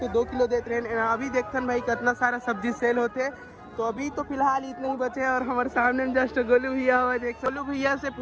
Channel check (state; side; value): identical; both; correlation 1.00